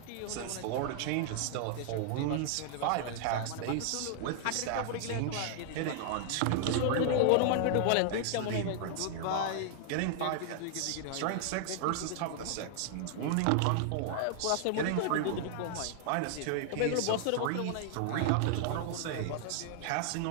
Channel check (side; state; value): both; different; correlation -0.01